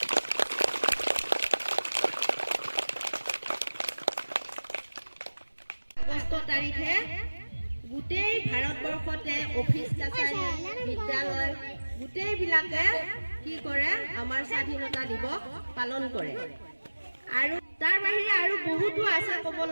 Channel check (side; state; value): both; inverted; correlation -1.00